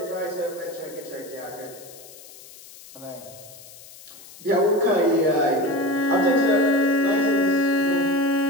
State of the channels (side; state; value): left; noise; hiss, 19 dB below the sound